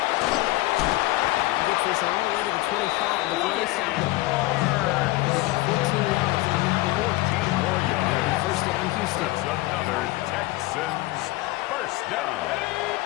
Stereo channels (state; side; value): quieter; right; 19.1 dB